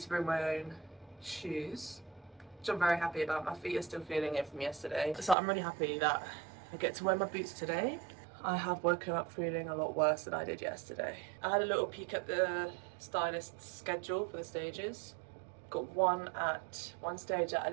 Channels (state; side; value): drops out; left; at 5.4 s